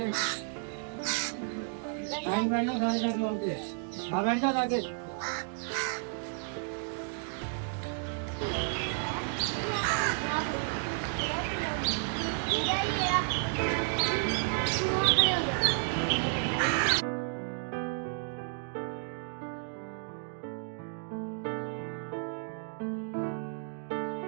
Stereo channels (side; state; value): left; silent; 56 dB below the other